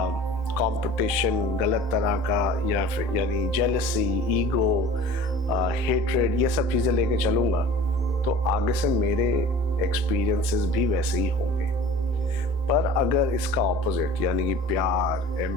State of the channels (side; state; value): both; normal; correlation 0.43